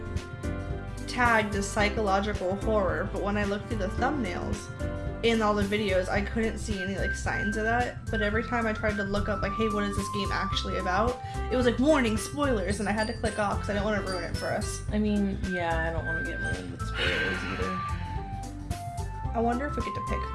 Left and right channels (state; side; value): identical; both; correlation 1.00